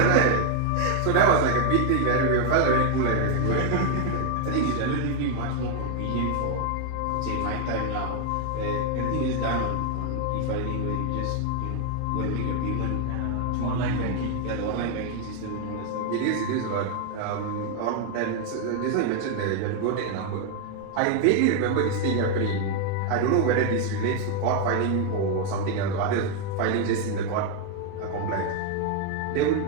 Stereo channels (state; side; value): different; both; correlation 0.00